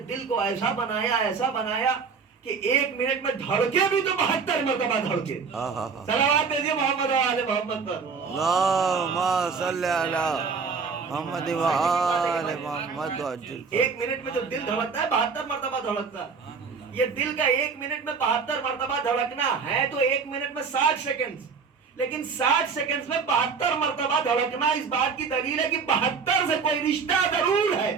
دل کو ایسا بنایا کہ ایک منٹ میں دھڑکے بھی تو 72 مرتبہ دھڑکے. صلوات بھیجیے محمد و آل محمد پر. اللہم صلی علی محمد و آل محمد. ایک منٹ میں جو دل دھڑکتا ہے 72 مرتبہ دھڑکتا ہے. یہ دل کا ایک منٹ میں 72 مرتبہ دھڑکنا ہے تو ایک منٹ میں 60 سیکنڈ، لیکن 60 سیکنڈ میں 72 مرتبہ دھڑکنا اس بات کی دلیل ہے کہ 72 سے کوئی رشتہ ضرور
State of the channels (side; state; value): left; quieter; 5.4 dB